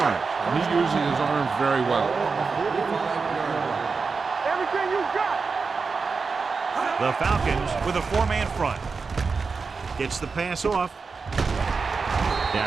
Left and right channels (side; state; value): left; quieter; 4.7 dB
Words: and he uses his arms very well. The Falcons with a 4-man front. Gets the pass off.